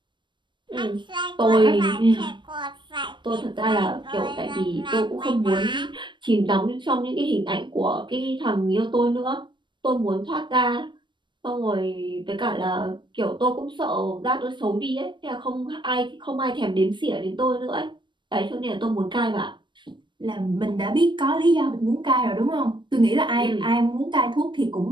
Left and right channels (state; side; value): late; left; 0.23 ms